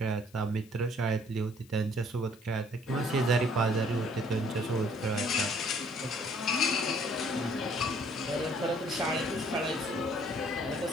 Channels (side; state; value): left; noise; hiss, 26 dB below the sound